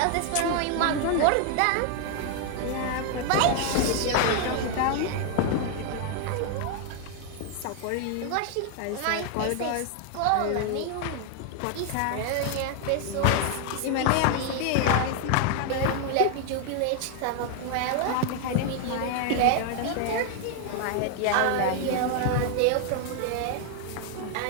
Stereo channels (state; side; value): different; both; correlation 0.00